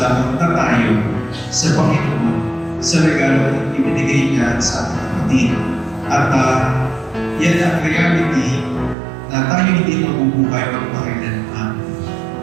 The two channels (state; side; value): drops out; left; at 9.0 s